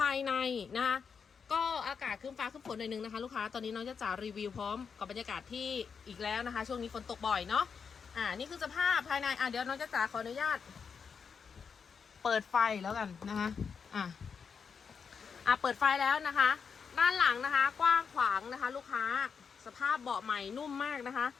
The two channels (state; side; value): quieter; right; 6.1 dB